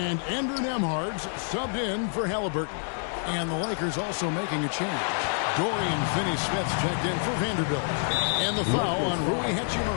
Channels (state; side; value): silent; right; 57 dB below the other